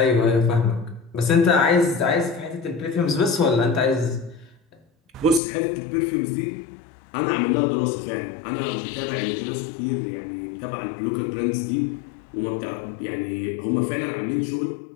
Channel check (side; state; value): right; drops out; at 5.4 s